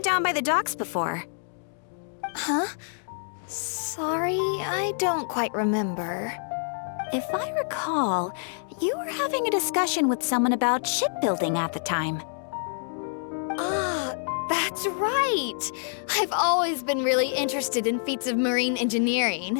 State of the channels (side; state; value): right; silent; digital silence